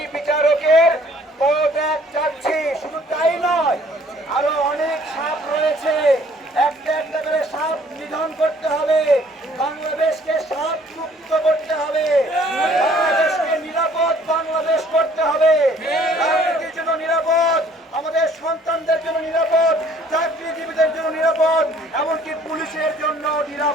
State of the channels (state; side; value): normal; both; correlation 0.58